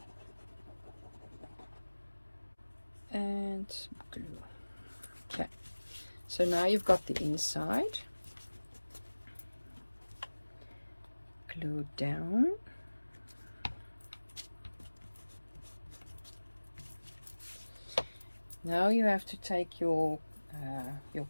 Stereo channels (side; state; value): both; inverted; correlation -1.00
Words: And glue. Okay, so now you've got the inside. Glue down. Now you have to take your